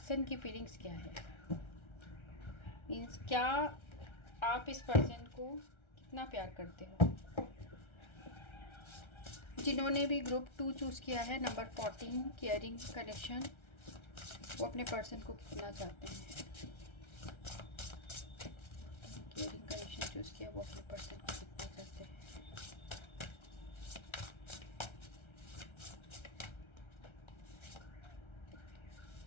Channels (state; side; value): late; right; 1.3 ms